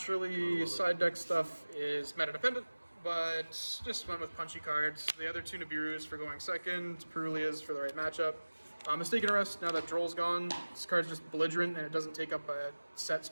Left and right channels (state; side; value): inverted; both; correlation -1.00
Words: side deck stuff is meta dependent, but just went with punchy cards. The other 2 Nibirus for going second, Perulias for the right matchup. Mistaken Arrest, now that Droll's gone, this card's just belligerent and it doesn't take up a set